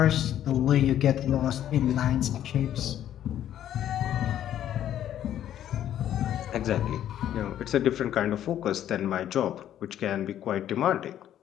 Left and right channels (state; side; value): quieter; right; 11.2 dB